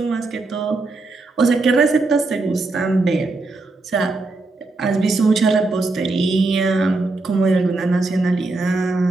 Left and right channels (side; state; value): left; quieter; 3.3 dB